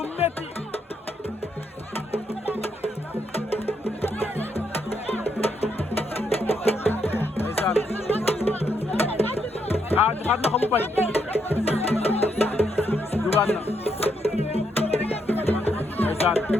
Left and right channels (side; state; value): both; normal; correlation 0.77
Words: métti ndeysaan joxaat na ko mu bañ dugaat na